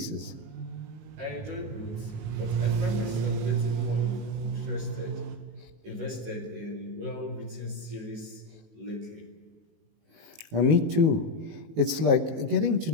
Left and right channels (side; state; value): left; late; 19 ms